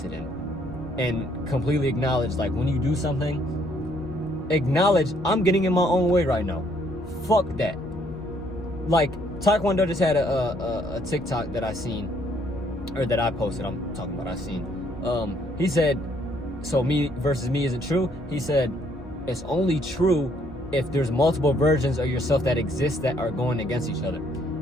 in and completely acknowledge. Like when you do something, acknowledge I'm getting in my own way right now. Fuck that. Like Taekwondo just had a TikTok that I seen, or that I posted. I'm talking about I seen. He said, so me versus me isn't true. He said it's only true if there's multiple versions of yourself that exist that are going against each other.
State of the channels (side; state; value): both; normal; correlation 0.67